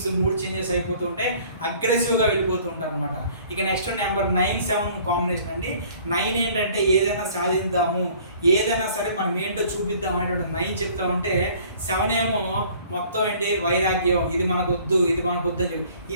మూడ్ చేంజెస్ అయిపోతూ ఉంటాయి, అగ్రెసివ్గా వెళ్ళిపోతూ ఉంటారు అనమాట. ఇక నెక్స్ట్ నెంబర్ 9-7 కాంబినేషన్ అండి. 9 ఏంటంటే ఏదైనా సాధిద్దాము, ఏదైనా సరే మనం ఏంటో చూపిద్దాం అనేటువంటి 9 చెప్తా ఉంటే, 7 ఏమో మొత్తం ఏంటి వైరాగ్యం, ఇది మనకు వద్దు, ఇది మనకు వద్దు అని చెప్పి.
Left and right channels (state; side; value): inverted; both; correlation -0.54